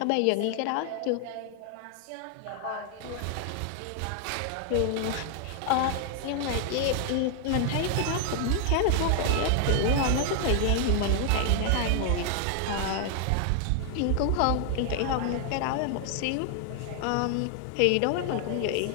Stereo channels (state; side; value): different; both; correlation 0.00